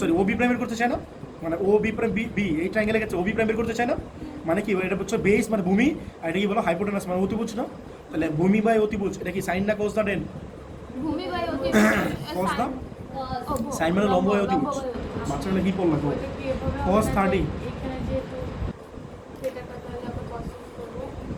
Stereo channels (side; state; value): both; identical; correlation 1.00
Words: ও বি প্রাইম বের করতে চাই না মানে ও বি প্রাইম বি এই ট্রায়াঙ্গেলে গেছে ও বি প্রাইম বের করতে চাই না মানে কি এটা হচ্ছে বেস মানে ভূমি আর এটা কি বলো হাইপোটেনাস মানে অতিভুজ না তাহলে ভূমি বাই অতিভুজ এটা কি সাইন না কোস না টেন ভূমি বাই অতিভুজ Cos না? ও, সাইন মানে লম্ব বাই অতিভুজ বাচ্চারা কি পড়লো তো Cos 30 এখানে যেহেতু সেটাটা তাহলে আমরা কষ্ট করবো